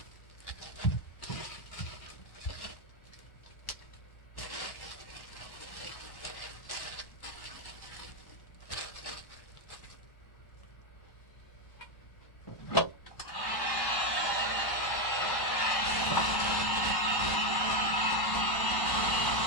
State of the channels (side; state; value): right; late; 1.1 ms